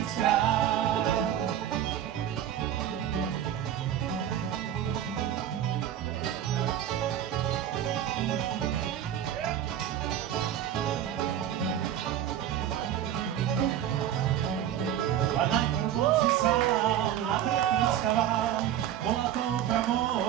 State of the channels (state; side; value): quieter; left; 10.7 dB